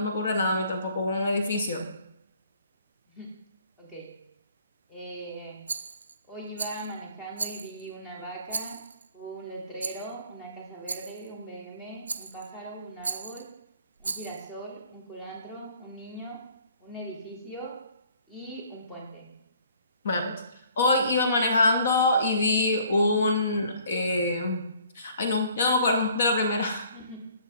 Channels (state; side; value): inverted; both; correlation -0.57